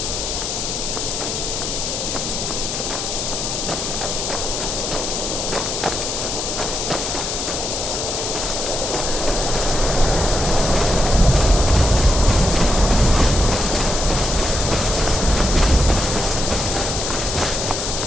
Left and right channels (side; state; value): left; noise; hiss, 3 dB below the sound